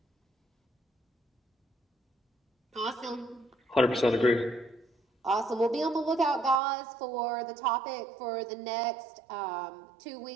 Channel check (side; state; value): left; drops out; at 6.6 s